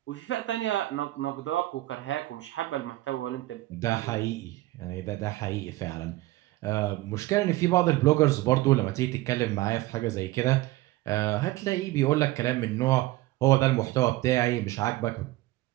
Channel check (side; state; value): left; quieter; 17.9 dB